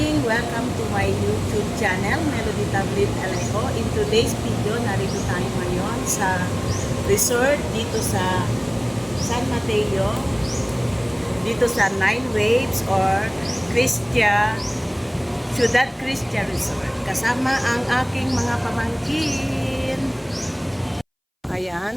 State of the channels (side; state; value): both; identical; correlation 1.00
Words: Welcome to my YouTube channel, Melody Tablet Alejo. In today's video, narito tayo ngayon sa resort dito sa San Mateo, dito sa Nine Waves or Ciudad Cristia Resort. Kasama ang aking mga pamangkin.